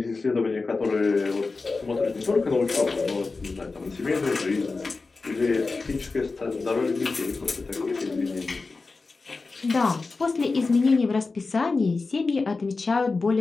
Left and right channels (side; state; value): right; quieter; 3.9 dB